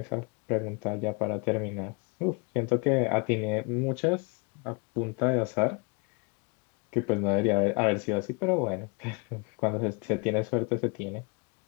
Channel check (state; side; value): quieter; right; 32.5 dB